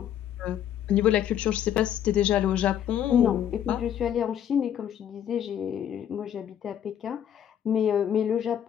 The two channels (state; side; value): quieter; right; 9.9 dB